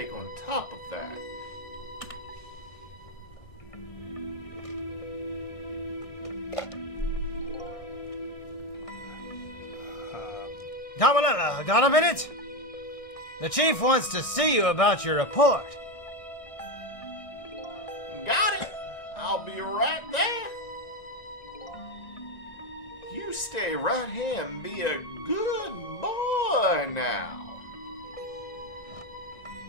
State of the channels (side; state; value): right; late; 1.6 ms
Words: on top of that. Camarilla, got a minute? The chief wants to see you about your report. Got it! I'll be right there. You stay right here and be a good boy now.